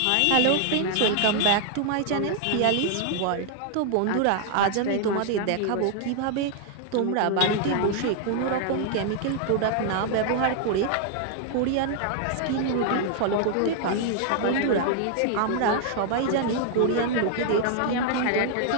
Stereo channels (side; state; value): both; different; correlation 0.00